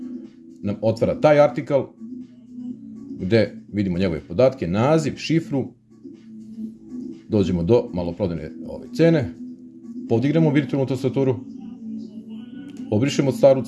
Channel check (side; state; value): both; identical; correlation 1.00